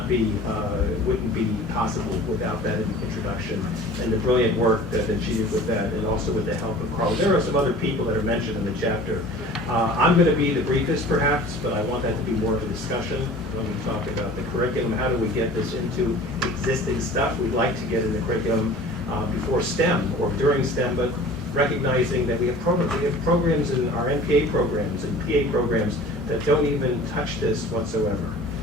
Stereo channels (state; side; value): normal; both; correlation 0.44